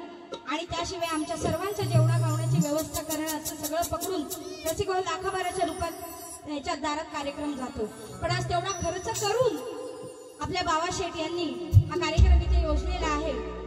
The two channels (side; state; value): both; identical; correlation 1.00